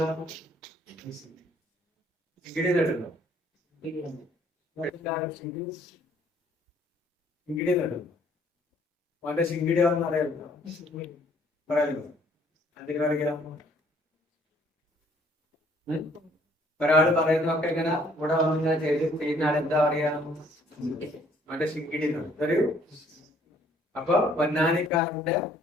കേട്ടോ? ശിങ്കിടി കേട്ടോ? അവന്റെ ശിങ്കിടി ആണെന്ന് അറിയാമോ? പറയാമോ? അതിന് പറയാം. ഒരാള് പറയുന്നതൊക്കെ ഇങ്ങനെ ഇവിടെ വന്നിങ്ങനെ ചെയ്യുന്ന ആളെന്താ പറയാ? അവന്റെ ശിങ്കിടി അറിയൂ. അപ്പൊ പൊന്നാനിക്കാരന്റെ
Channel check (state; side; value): normal; both; correlation 0.62